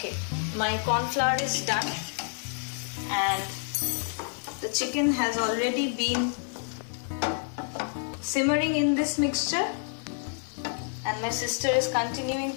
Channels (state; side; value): silent; right; 59 dB below the other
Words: my corn flour is done and the chicken has already been simmering in this mixture and my sister is continuing